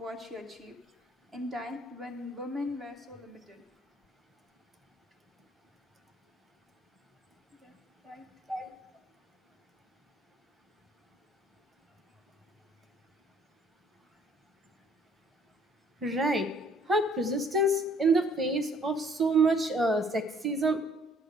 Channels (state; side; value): normal; both; correlation 0.60